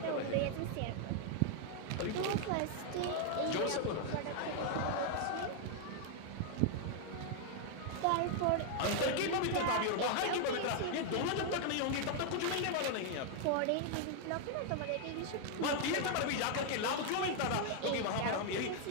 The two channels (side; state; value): both; different; correlation 0.00